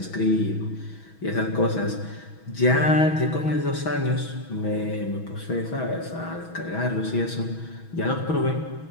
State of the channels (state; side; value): late; right; 6.2 ms